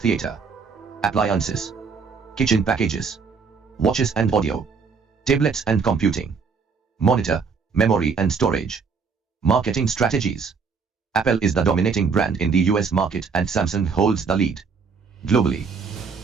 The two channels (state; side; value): quieter; left; 5.3 dB